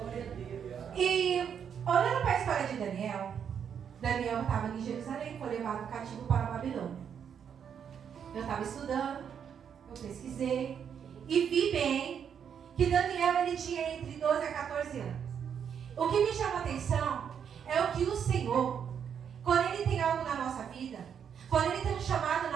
E olhando para a história de Daniel estava em Jerusalém, foi levado cativo para a Babilônia. Eu estava estudando, eu pesquisei e vi bem que Daniel ele tinha entre 12 a 14 anos. O que me chama a atenção é o que o Senhor, quando Ele tem algo na nossa vida, quando Ele tem um chamado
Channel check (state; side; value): quieter; left; 7.9 dB